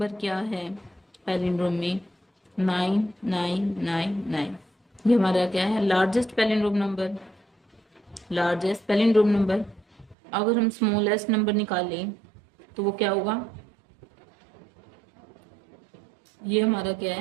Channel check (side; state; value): left; drops out; at 10.2 s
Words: क्या है पैलिंड्रोम में? 9999। ये हमारा क्या है, largest palindrome number. Largest palindrome number. अगर हम स्मॉलेस्ट नंबर निकालें तो वो क्या होगा? ये हमारा क्या